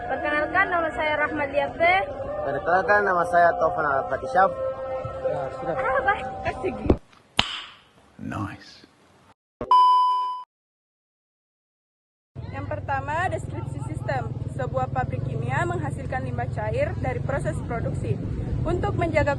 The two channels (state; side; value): identical; both; correlation 1.00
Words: Perkenalkan nama saya Rahmat Liafe. Perkenalkan nama saya Taufan Al-Fatishaf. Ya, sudah. Nice. Yang pertama, deskripsi sistem. Sebuah pabrik kimia menghasilkan limbah cair dari proses produksi. Untuk